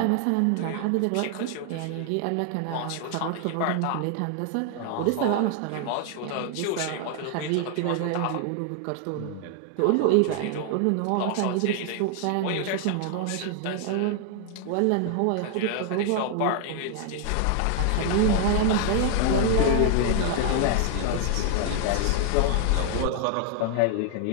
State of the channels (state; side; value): different; both; correlation 0.00